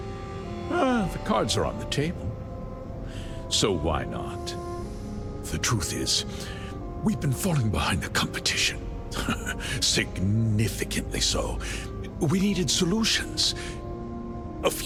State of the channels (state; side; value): identical; both; correlation 1.00